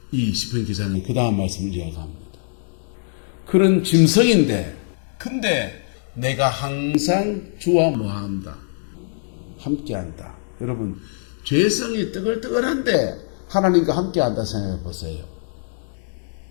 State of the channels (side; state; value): right; silent; digital silence